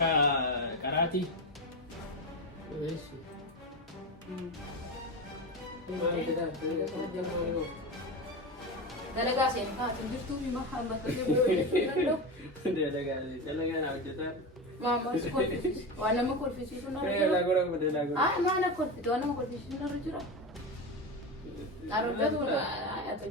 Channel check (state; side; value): normal; both; correlation 0.20